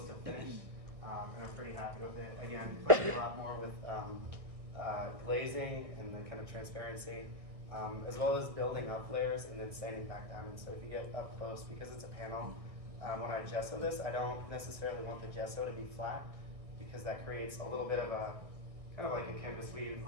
to finished, and I'm pretty happy with it. Again, playing a lot more with glazing and the kind of transparency, as well as building up layers and then sanding back down. And so if you get up close, because it's a panel, when I gesso this, I don't necessarily want the gesso to be flat, because that creates a little bit of a kind of like a canvas weave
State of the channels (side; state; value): left; late; 1.6 ms